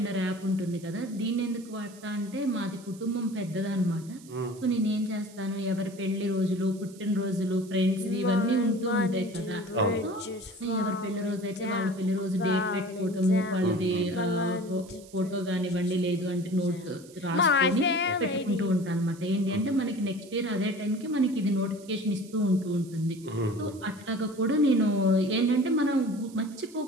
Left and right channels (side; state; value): right; noise; hiss, 22 dB below the sound